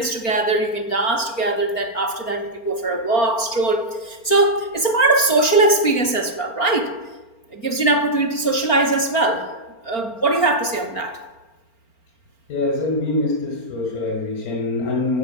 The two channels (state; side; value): late; right; 4.4 ms